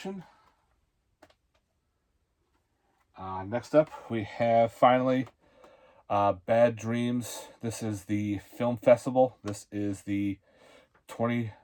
Next up, we have finally Bad Dreams. This is the film festival. This is the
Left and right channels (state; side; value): identical; both; correlation 1.00